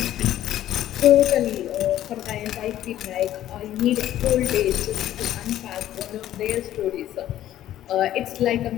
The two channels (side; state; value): right; quieter; 12.7 dB